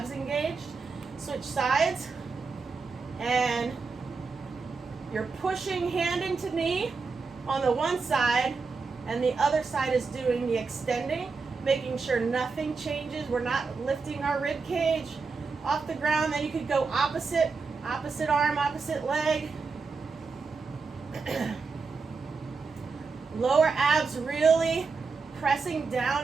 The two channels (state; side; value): quieter; left; 4.6 dB